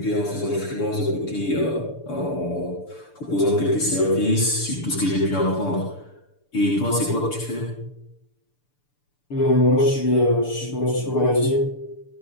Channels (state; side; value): late; right; 6.8 ms